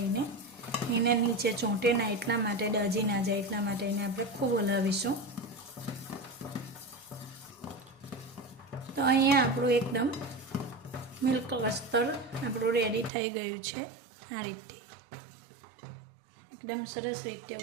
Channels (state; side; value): drops out; left; at 13.1 s